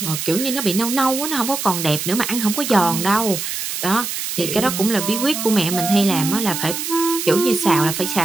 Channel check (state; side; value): noise; right; hiss, 4 dB below the sound